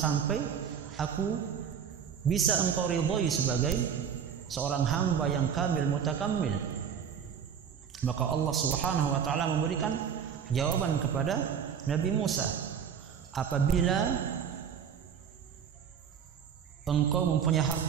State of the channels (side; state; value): left; quieter; 7.7 dB